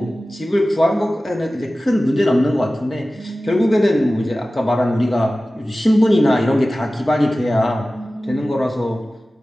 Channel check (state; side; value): normal; both; correlation 0.96